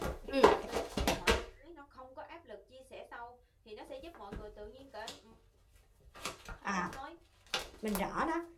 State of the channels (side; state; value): both; identical; correlation 1.00